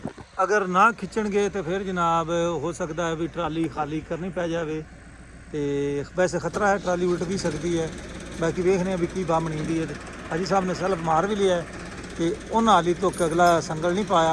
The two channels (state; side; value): identical; both; correlation 1.00